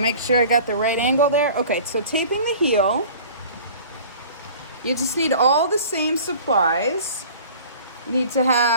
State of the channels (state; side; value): inverted; both; correlation -0.45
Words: make sure I got the right angle there. Okay, so taping the heel, you just need all the same supplies. You need to